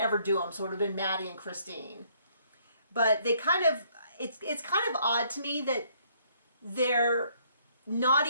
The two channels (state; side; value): inverted; both; correlation -0.65